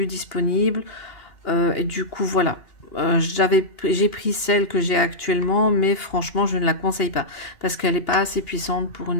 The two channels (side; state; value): right; late; 2.8 ms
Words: disponible. Et du coup, voilà. J'ai pris celle que j'ai actuellement, mais franchement, je ne la conseille pas parce qu'elle n'est pas assez puissante pour